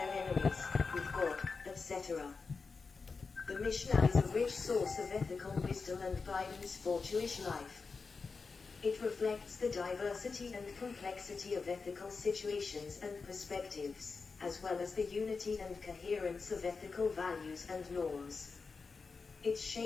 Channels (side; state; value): right; quieter; 4.6 dB